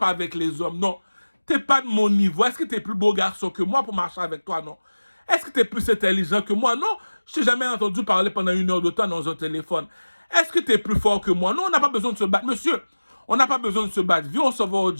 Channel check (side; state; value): both; inverted; correlation -1.00